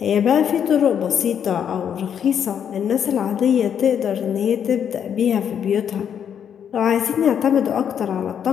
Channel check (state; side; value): quieter; right; 8.4 dB